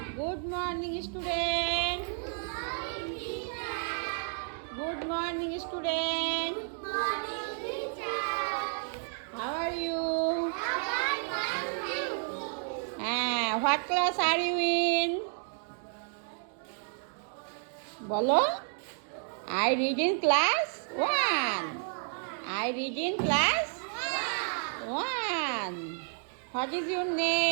Good morning student. Good morning student. How are you? What class are you in? Bolo? I read in class 1. I read in class 1. What is your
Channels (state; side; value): silent; left; 57 dB below the other